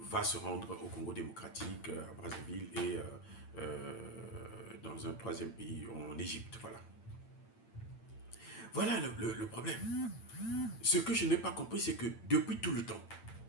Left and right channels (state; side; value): late; right; 8.8 ms